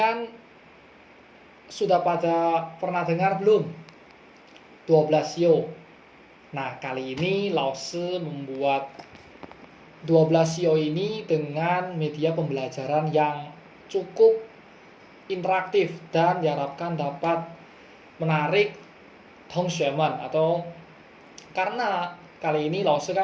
sudah pada pernah dengar belum 12 sio? Nah, kali ini Lause membuat 12 sio ini dengan media pembelajaran yang cukup interaktif dan diharapkan dapat menarik Tongshuemen, atau karena kali ini Lause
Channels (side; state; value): both; identical; correlation 1.00